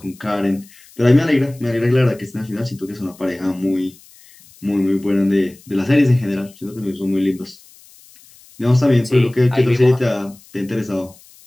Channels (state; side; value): noise; left; hiss, 25 dB below the sound